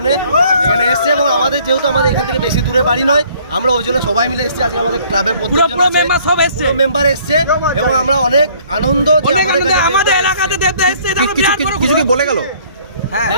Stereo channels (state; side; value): inverted; both; correlation -0.59